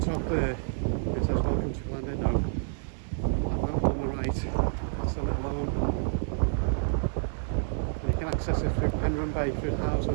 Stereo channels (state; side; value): silent; left; 58 dB below the other